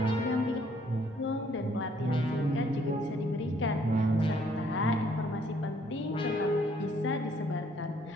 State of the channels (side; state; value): both; normal; correlation 0.65